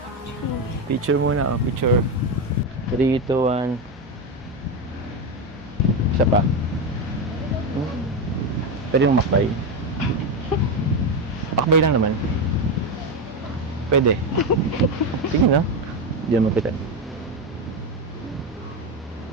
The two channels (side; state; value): both; normal; correlation 0.12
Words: Picture muna. Picture. 3, 2, 1. Isa pa. Pwede yung makbay. Makbay lang naman. Pwede. Sige na. Diyan mo kita.